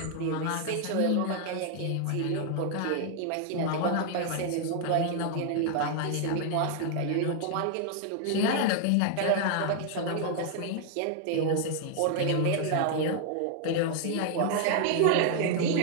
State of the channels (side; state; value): both; different; correlation 0.00